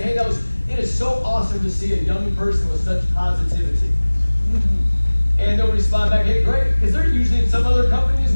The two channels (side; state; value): both; inverted; correlation -1.00